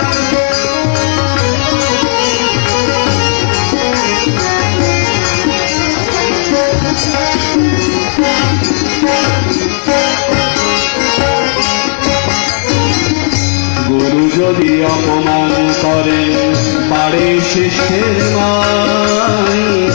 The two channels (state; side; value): silent; right; digital silence